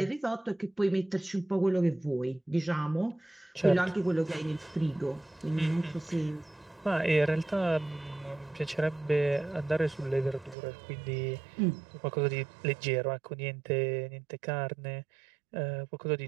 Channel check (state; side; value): drops out; left; at 10.6 s